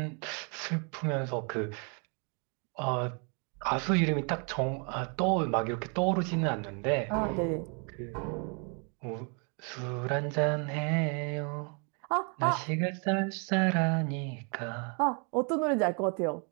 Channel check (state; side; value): quieter; left; 37.0 dB